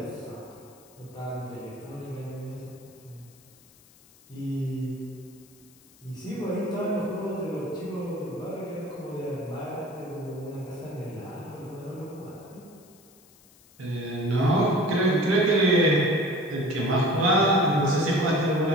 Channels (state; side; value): noise; left; hiss, 27 dB below the sound